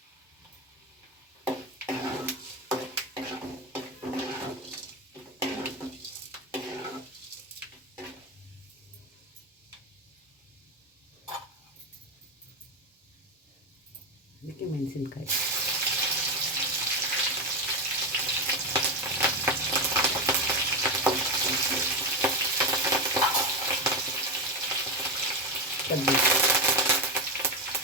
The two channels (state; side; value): normal; both; correlation 0.13